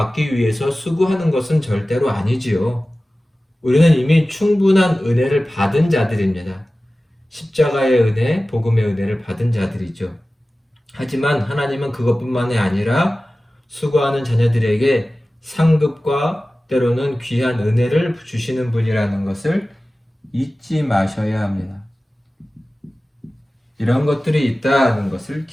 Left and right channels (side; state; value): both; normal; correlation 0.96